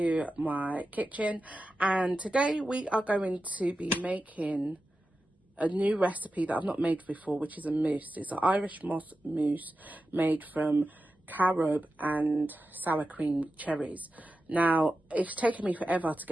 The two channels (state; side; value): normal; both; correlation 0.92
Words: my kitchen, and today we are going to be making a new recipe that I've not made before, which is a mousse. It's an Irish moss mousse made from carob and sour cream cherries. Now, it's taken me forever to